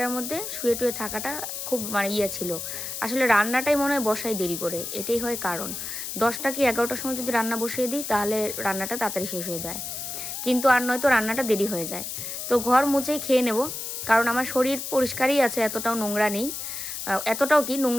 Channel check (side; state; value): left; noise; hiss, 6 dB below the sound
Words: মধ্যে শুয়ে টুয়ে থাকাটা খুব মানে ছিল। আসলে রান্নাটাই মনে হয় বসাই দেরি করে, এটাই হয় কারণ। 10টা কি 11টার সময় যদি রান্না বসিয়ে দিই তাহলে রান্নাটা তাড়াতাড়ি শেষ হয়ে যায়, কিন্তু আর নয়তো রান্নাটা দেরি হয়ে যায়। তো ঘর মুছেই খেয়ে নেব, কারণ আমার শরীর পরিষ্কারই আছে, এতটাও নোংরা নেই। এতটাও কি